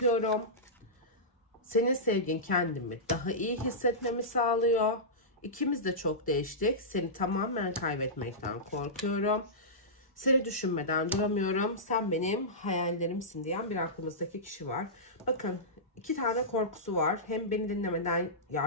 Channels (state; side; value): normal; both; correlation -0.16